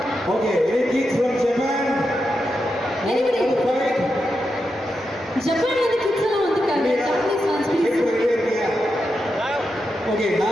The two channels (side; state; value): both; normal; correlation 0.87